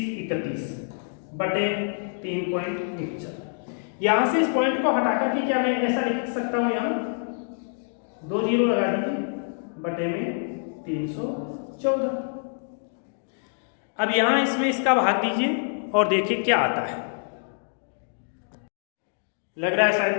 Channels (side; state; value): right; silent; 61 dB below the other